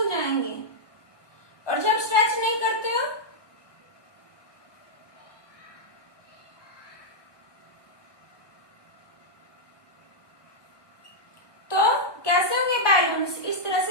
जाएंगे। और जब स्ट्रेच नहीं करते हो तो कैसे होंगे बैलून्स, इस तरह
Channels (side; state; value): right; late; 1.2 ms